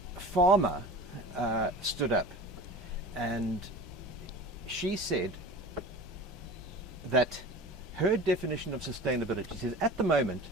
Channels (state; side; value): normal; both; correlation 0.37